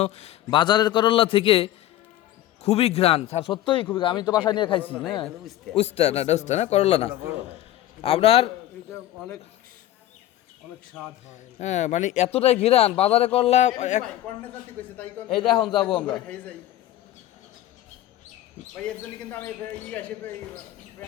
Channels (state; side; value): quieter; right; 13.6 dB